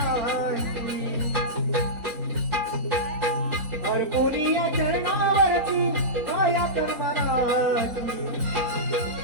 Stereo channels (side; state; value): left; late; 4.0 ms